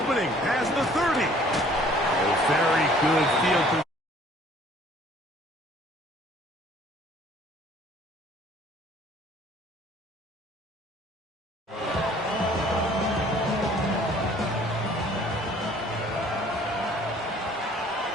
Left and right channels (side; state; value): both; normal; correlation 0.55